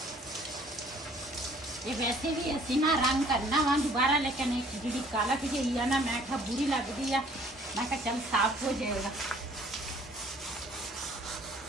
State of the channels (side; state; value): both; normal; correlation 0.56